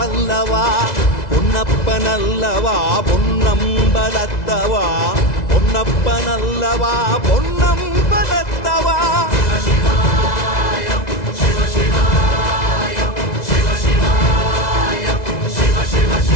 பொன்னப்பனல்லவா பொன்னம்பலத்தவா, பொன்னப்பனல்லவா பொன்னம்பலத்தவா.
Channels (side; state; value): right; late; 2.0 ms